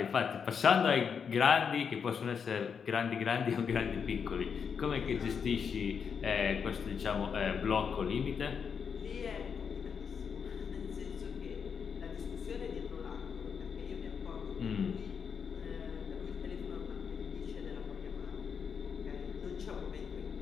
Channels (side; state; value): right; quieter; 6.6 dB